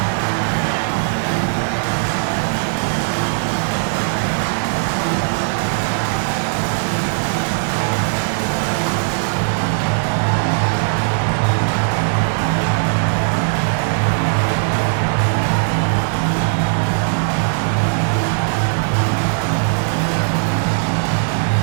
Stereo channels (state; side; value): silent; left; digital silence